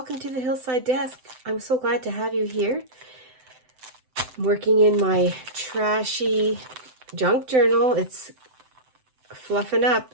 to the Hillside Desk. I'm so glad to have you here. I'm working in my trashy junk journal. It's fluffing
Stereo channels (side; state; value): left; late; 7.8 ms